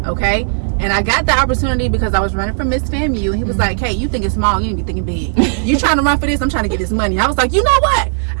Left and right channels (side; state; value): left; silent; 55 dB below the other